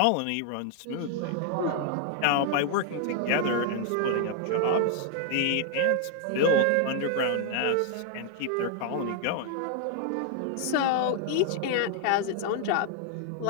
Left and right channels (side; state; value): both; different; correlation 0.00